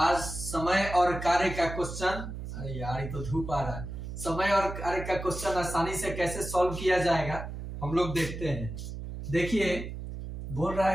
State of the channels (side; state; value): right; noise; hum, 8 dB below the sound